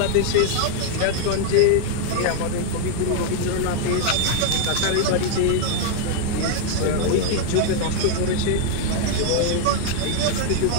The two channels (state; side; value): different; both; correlation 0.00